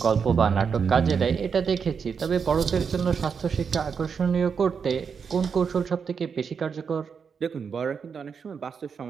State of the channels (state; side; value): quieter; left; 6.2 dB